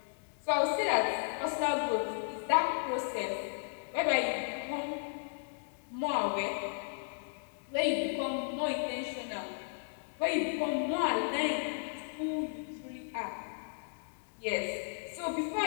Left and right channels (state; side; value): silent; right; digital silence